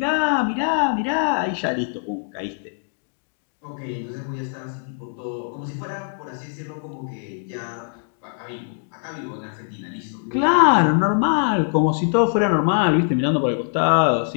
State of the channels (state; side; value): silent; right; digital silence